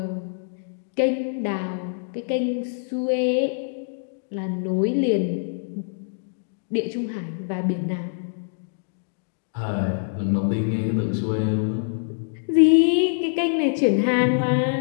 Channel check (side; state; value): right; silent; digital silence